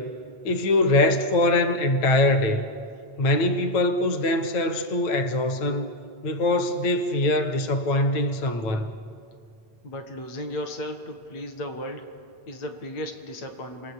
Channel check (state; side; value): late; right; 9.0 ms